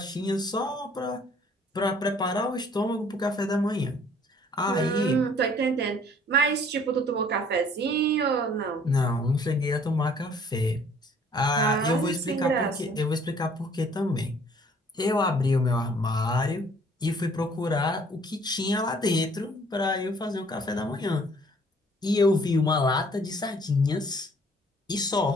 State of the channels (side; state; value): both; normal; correlation 0.57